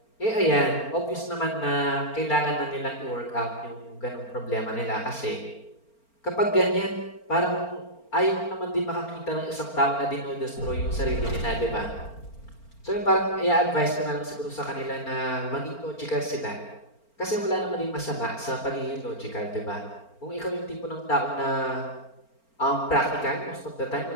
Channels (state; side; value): late; right; 4.4 ms